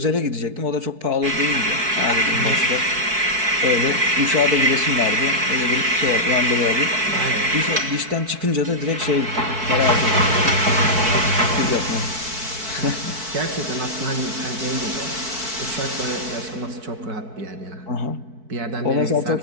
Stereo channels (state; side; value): late; left; 4.6 ms